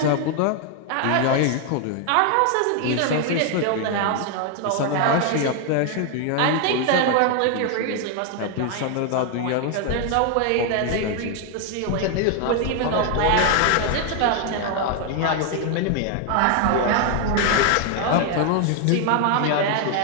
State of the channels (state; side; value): different; both; correlation 0.01